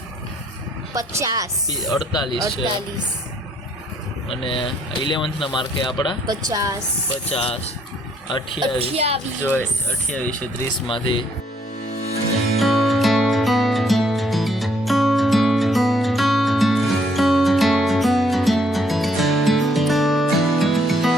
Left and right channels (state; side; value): normal; both; correlation 0.67